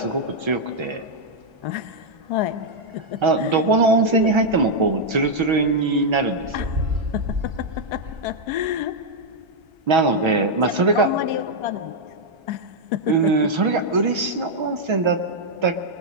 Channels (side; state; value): left; late; 1.3 ms